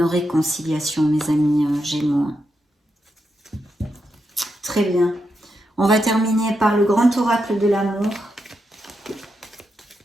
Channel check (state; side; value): normal; both; correlation 0.84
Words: réconciliation, mes amis Gémeaux. Très bien. On va terminer par le grand oracle de l'amour.